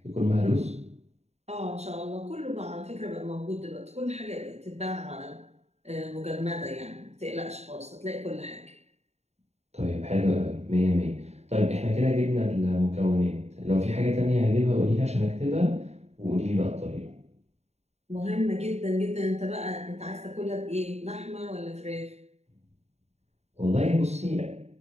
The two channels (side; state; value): left; late; 0.32 ms